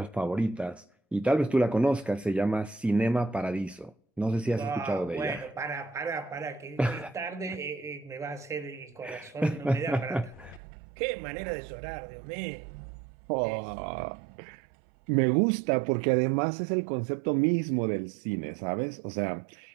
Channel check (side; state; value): left; drops out; at 10.6 s